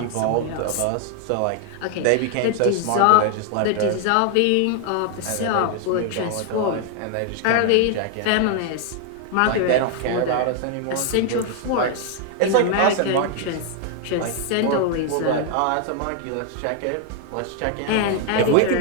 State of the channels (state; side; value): different; both; correlation 0.00